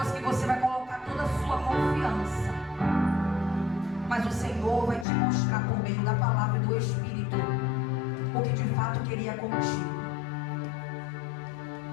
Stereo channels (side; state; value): right; drops out; at 5.1 s